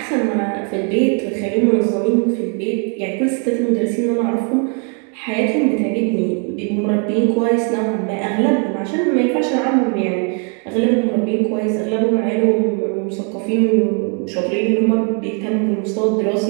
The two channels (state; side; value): quieter; left; 39.2 dB